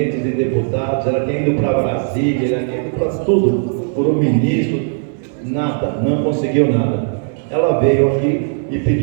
de deputados, ela tinha ido para Brasília, ela tinha ido para tudo, por um ministro, nada, não conseguiu nada. Ela veio aqui e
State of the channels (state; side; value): silent; left; 68 dB below the other